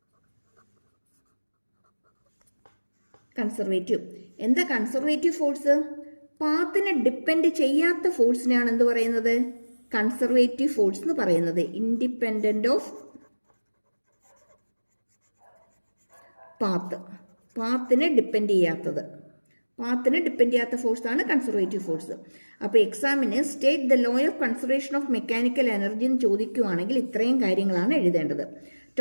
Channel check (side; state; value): both; inverted; correlation -1.00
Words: എന്താ കൺസർവേറ്റീവ് ഫോഴ്സ്? പാത്തിനെ ഡിപ്പെൻഡ് ചെയ്യാത്ത ഫോഴ്സിനെയാണ് എന്ത് പറയുന്നത്? കൺസർവേറ്റീവ് ഫോഴ്സ് എന്ന് പറയുന്നത്. ഇൻഡിപെൻഡന്റ് ഓഫ് പാത്തിനെ ഡിപ്പെൻഡ് ചെയ്യാത്തത്, പാത്തിനെ ഡിപ്പെൻഡ് ചെയ്യാത്ത ഫോഴ്സാണ് കൺസർവേറ്റീവ് ഫോഴ്സ്. അപ്പോൾ എക്സാമിന് state the law of conservation of mechanical energy എന്ന് ചോദിക്കുകയാണെങ്കിൽ ഇത്രയും കാര്യങ്ങളാണ് എഴുതേണ്ടത്.